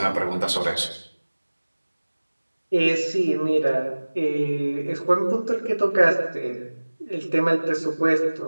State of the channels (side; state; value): both; inverted; correlation -1.00